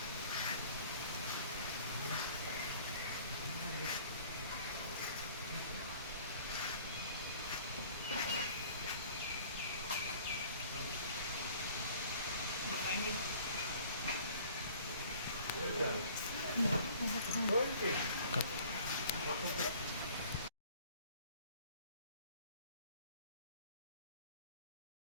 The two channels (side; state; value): both; inverted; correlation -0.51